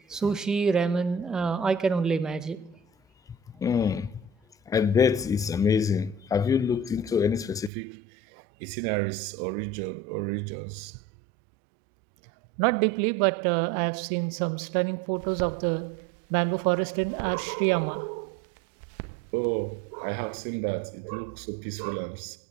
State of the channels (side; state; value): left; drops out; at 7.7 s